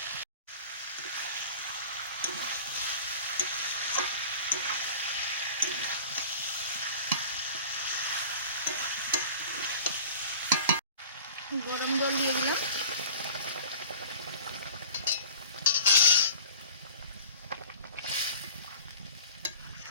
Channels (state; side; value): inverted; both; correlation -0.40